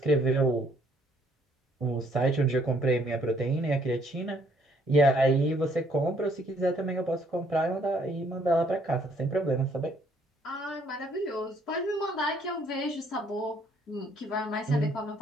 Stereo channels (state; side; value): normal; both; correlation 0.65